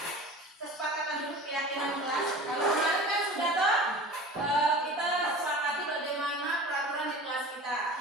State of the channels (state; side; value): normal; both; correlation 0.38